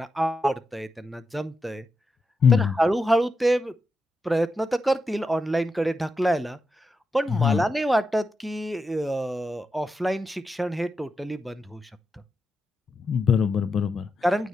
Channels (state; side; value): normal; both; correlation 0.87